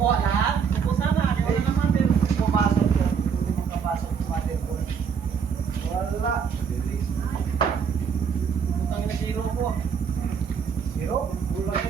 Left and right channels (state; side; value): quieter; left; 6.7 dB